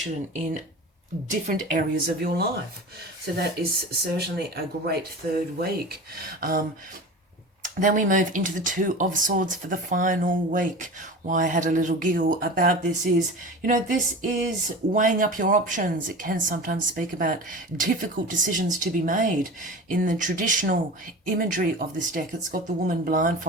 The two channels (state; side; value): normal; both; correlation 0.33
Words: in different areas of your life. So that is certainly a great third week. Then we move into the Two of Swords for the final week. Why I had a little giggle about this is, this is weighing up your options. It can sometimes speak about difficult decisions to be made. In the traditional imagery of this deck, it's got the woman